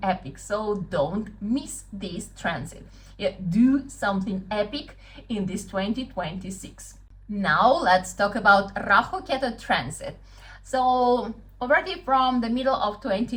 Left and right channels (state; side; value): identical; both; correlation 1.00